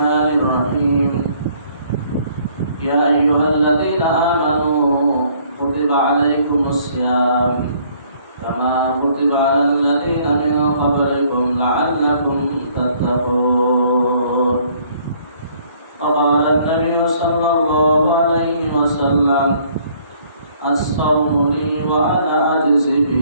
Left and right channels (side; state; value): both; inverted; correlation -0.62